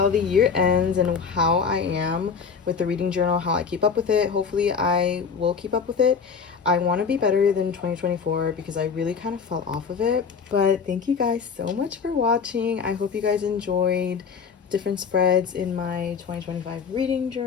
the year ends and how I am with the reading journal, how I keep up with it. Hopefully I will keep up with it. I want to be better than 2024 because I really kind of fell off of it. But thank you guys so much for watching. I hope you guys enjoyed different spreads in my 2025 reading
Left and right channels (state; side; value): quieter; right; 5.9 dB